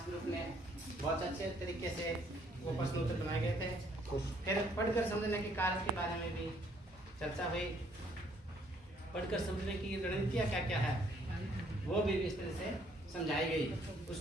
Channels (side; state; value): both; normal; correlation 0.65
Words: ग्रुप में बहुत अच्छे तरीके से वो प्रश्नोत्तर बनाए गए थे। फिर पढ़कर समझने के कार्य के बारे में भी चर्चा हुई, पढ़कर समझने की रणनीतियाँ क्या क्या है वो भी इस तरह से समझाई गई।